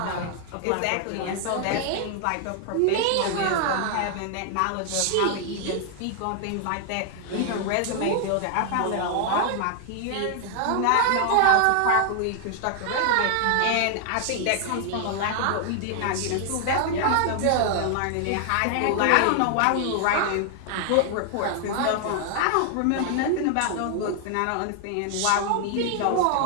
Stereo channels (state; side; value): different; both; correlation 0.00